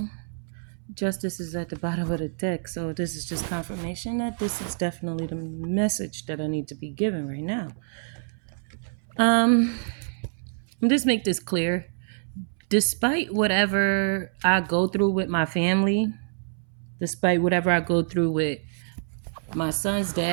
justice is at the bottom of the deck. So this is just confirmation that this is definitely the message that I need to be given right now. Just make this clear. Despite whatever I go through with my family, despite whatever I go through with my son's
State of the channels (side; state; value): left; silent; 61 dB below the other